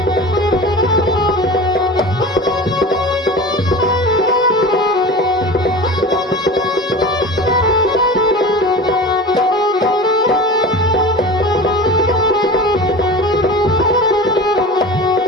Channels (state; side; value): normal; both; correlation 0.33